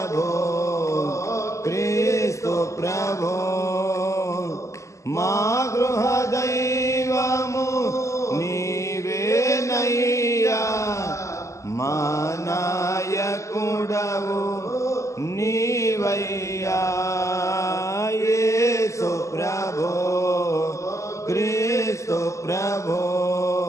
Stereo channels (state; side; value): late; right; 0.15 ms